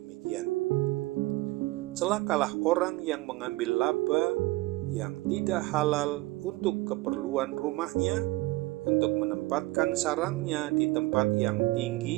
Celakalah orang yang mengambil laba yang tidak halal untuk keperluan rumahnya, untuk menempatkan sarangnya di tempat yang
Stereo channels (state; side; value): quieter; left; 20.2 dB